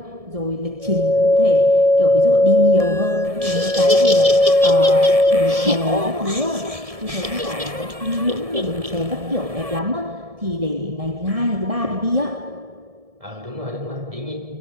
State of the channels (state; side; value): late; left; 1.7 ms